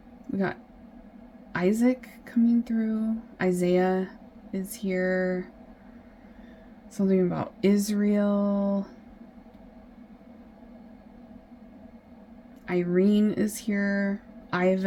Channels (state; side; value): identical; both; correlation 1.00